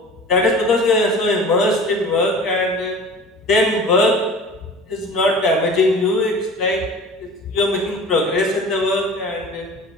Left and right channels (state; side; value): normal; both; correlation 0.40